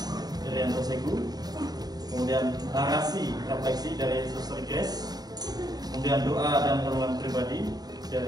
Irianto Segu, kemudian narasi refleksi dari Suster Grace, kemudian doa dan renungan pribadi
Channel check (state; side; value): late; left; 0.19 ms